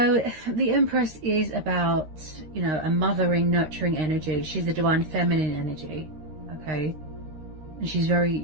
the Empress is about, you know, a mothering, nurturing energy. She's the divine feminine energy, okay? And she's very,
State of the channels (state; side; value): late; left; 13 ms